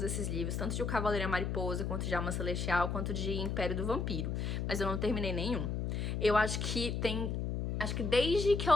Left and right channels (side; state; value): left; noise; hum, 1 dB below the sound